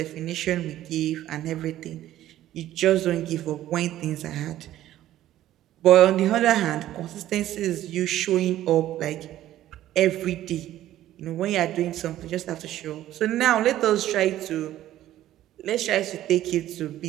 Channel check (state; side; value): quieter; left; 13.4 dB